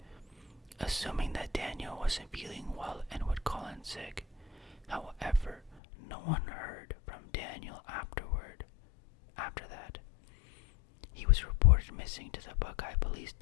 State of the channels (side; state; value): right; drops out; at 5.8 s